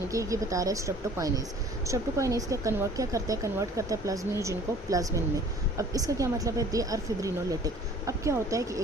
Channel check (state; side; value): normal; both; correlation 0.50